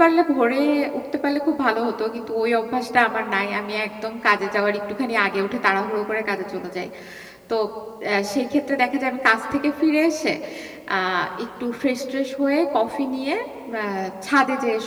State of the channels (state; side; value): identical; both; correlation 1.00